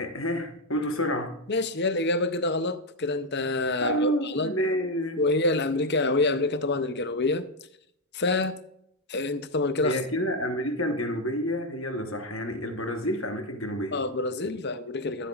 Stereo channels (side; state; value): both; normal; correlation 0.04